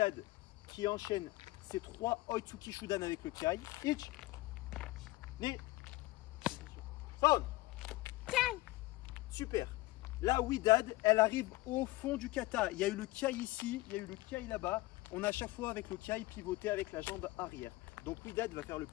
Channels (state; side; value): quieter; right; 19.7 dB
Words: qui enchaîne ces trois Oitsuki Shudan avec le Kiai. Ich, Ni, Son. Super. Là, Widad, elle arrive au fond du kata. Il y a eu le Kiai ici, il y a eu le Kiai là-bas. On a à chaque fois avec le Kiai pivoté avec la jambe arrière. Donc Widad va faire le